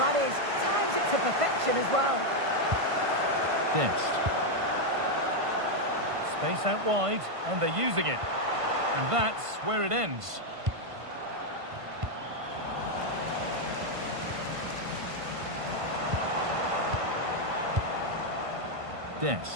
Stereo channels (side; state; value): left; late; 1.5 ms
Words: is. Times it to perfection as well. Dest. Space out wide, and they're using it. And that's where it ends.